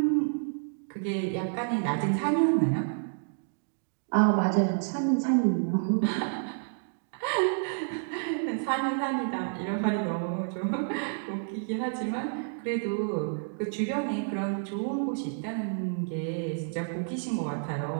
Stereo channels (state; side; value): silent; left; digital silence